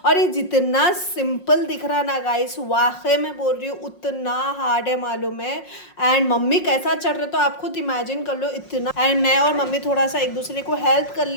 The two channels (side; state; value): right; late; 5.5 ms